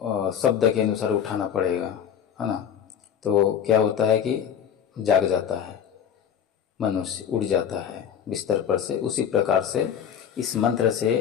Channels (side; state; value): right; quieter; 8.5 dB